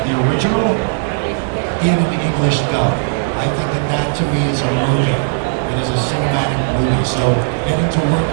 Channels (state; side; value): silent; left; 69 dB below the other